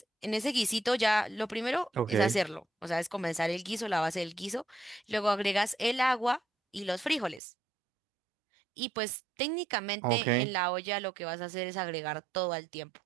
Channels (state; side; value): drops out; left; at 7.4 s